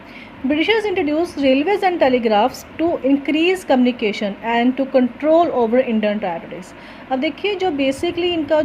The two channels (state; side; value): identical; both; correlation 1.00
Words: Britishers introduced railways and telegraphs to increase communication and to control over Indian territories. अब देखिए जो basically इनका